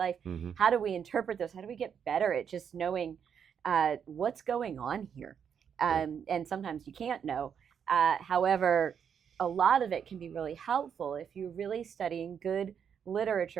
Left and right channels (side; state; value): left; quieter; 7.7 dB